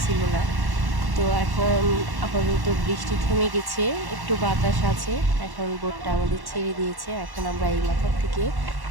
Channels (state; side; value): late; left; 1.1 ms